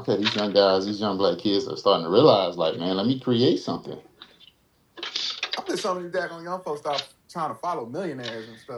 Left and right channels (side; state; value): both; identical; correlation 1.00